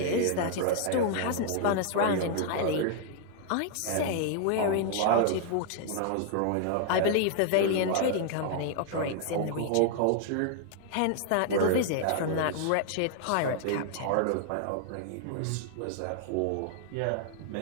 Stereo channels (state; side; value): different; both; correlation 0.00